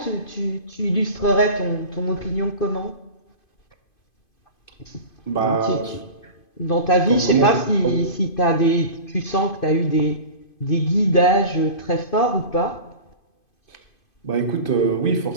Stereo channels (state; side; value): late; right; 2.5 ms